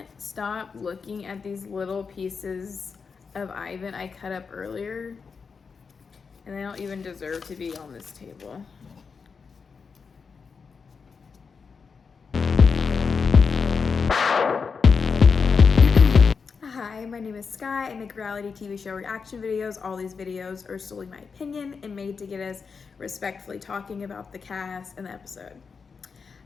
stop looking at these little pieces of Ivan I cut up earlier, and they don't even deserve to be on this table. Hi, my name is Sky. I make reality TV show reaction videos. All these videos are solely my opinion and made to get us respectfully talking about the cast and the episode.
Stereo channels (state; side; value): quieter; right; 5.4 dB